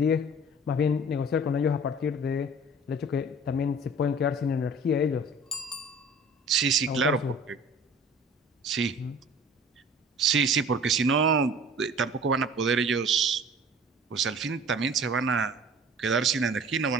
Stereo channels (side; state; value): both; normal; correlation 0.45